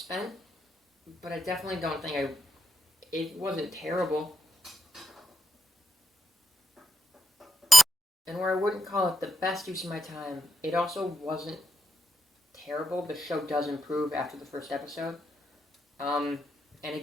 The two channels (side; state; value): both; normal; correlation 0.86